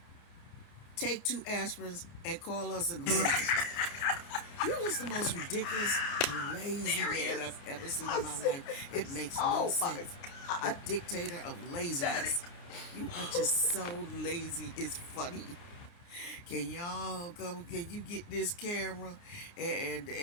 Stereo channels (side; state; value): right; late; 30 ms